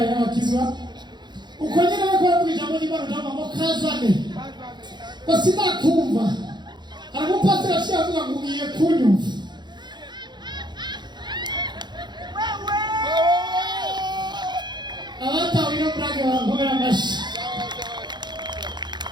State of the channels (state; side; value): late; left; 0.21 ms